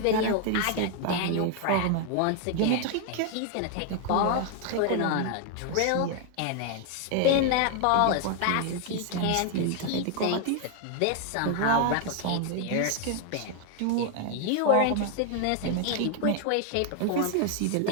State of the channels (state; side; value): different; both; correlation 0.00